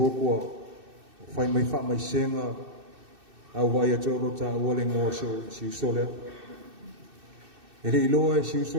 ua whai mai wha mai senga au vai atu alo ta ua le ngoa si uso leo e le iloa e si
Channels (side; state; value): left; late; 2.6 ms